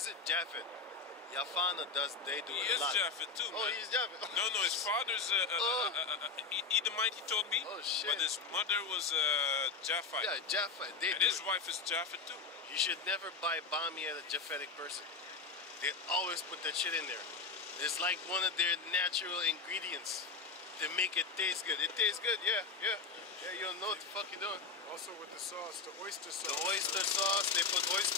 it? Japheth. Yafana does. They do He it a is lot. Japheth too, man. Oh, he's Japheth. No, his father's Edomite, he told me. Oh, shit. But his mother was Japhite. Yeah, Japheth. They And do his it. wife is Japheth too. You should never buy bami at a Japhetic person. They always put that shit in there. It's like one of their natural ingredients to make it taste good. It tastes good, yeah. You don't know what the fuck you're doing. Also with the sauce, the oyster sauce. The oyster sauce, they put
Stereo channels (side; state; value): right; quieter; 4.7 dB